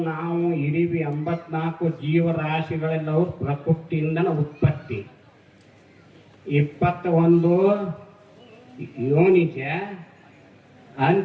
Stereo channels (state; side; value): identical; both; correlation 1.00